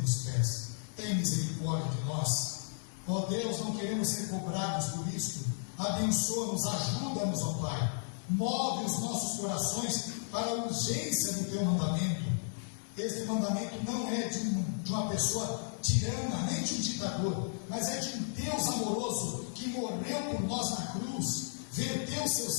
pés. Tem misericórdia de nós. Ó Deus, não queremos ser cobrados por isto. Abençoa-nos, ajuda-nos, ó Pai. Move os nossos corações para a urgência do Teu mandamento. Este mandamento não é de uma pessoa tirana, nem de um ditador, mas é de um Deus amoroso que morreu por nós na cruz, verteu seu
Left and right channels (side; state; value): right; silent; 55 dB below the other